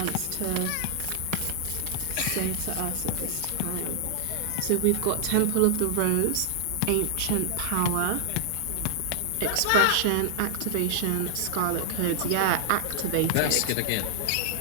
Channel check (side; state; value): both; different; correlation -0.01